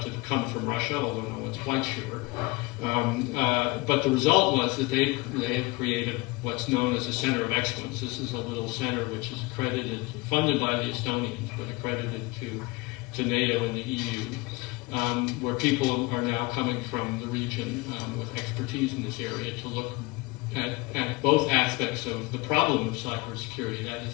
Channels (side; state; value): right; quieter; 24.0 dB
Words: to come from Russia, although no one's quite sure. But the result was that they've created what's known as a center of excellence. This is a little center which is funded by the Estonians, but accredited to NATO and the EU, where people are now coming from the region with expertise in this area to look at both aspects of the problem of cybersecurity. That is,